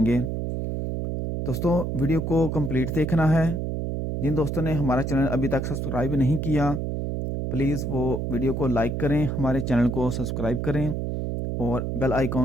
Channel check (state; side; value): noise; right; hum, 2 dB below the sound